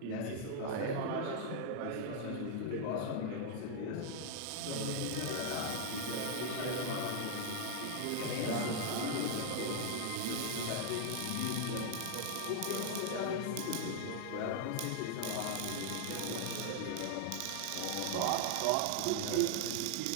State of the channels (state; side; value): different; both; correlation 0.00